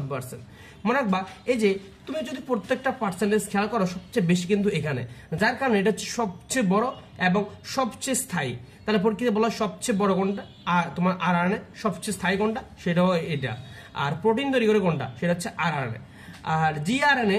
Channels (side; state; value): both; identical; correlation 1.00